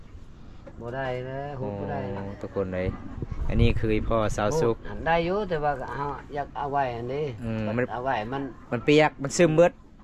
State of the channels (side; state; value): both; identical; correlation 1.00